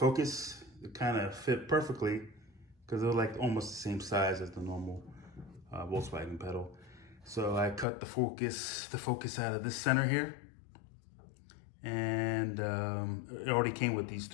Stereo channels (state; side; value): drops out; right; at 7.9 s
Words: It kind of fit perfectly because they were like almost the same size as the normal Volkswagen pedal. So I cut the focus out of this center here. And it already came with these